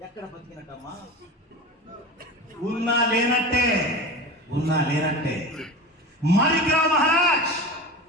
ఎక్కడ బతికినట్టమ్మా? ఉన్నా లేనట్టే, ఉన్నా లేనట్టే.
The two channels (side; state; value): both; normal; correlation 0.30